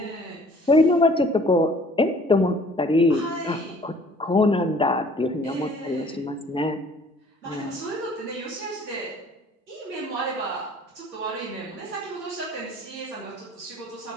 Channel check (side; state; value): both; normal; correlation 0.54